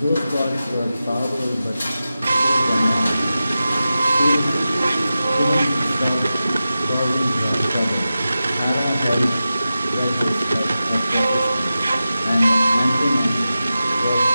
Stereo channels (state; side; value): inverted; both; correlation -0.93